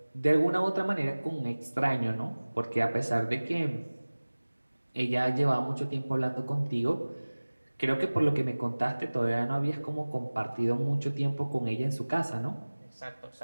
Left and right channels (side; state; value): both; inverted; correlation -1.00